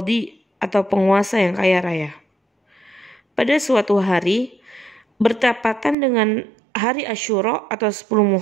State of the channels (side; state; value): left; drops out; at 6.0 s